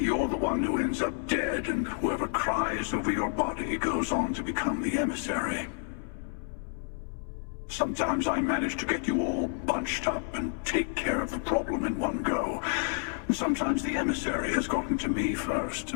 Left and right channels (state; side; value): silent; right; 58 dB below the other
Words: the one who ends up dead, and whoever cries over your body goes on to become the emissary. Sometimes I manage to get you all bunched up and take care of the problem in one go. Sometimes the emissary has gotten to me first,